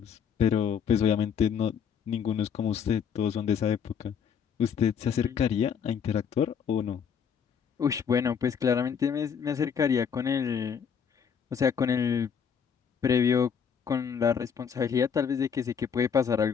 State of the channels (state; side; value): quieter; right; 7.2 dB